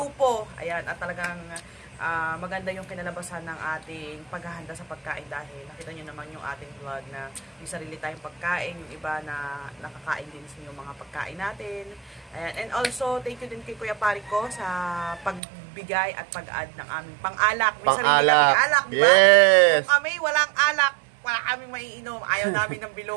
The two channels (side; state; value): left; drops out; at 15.4 s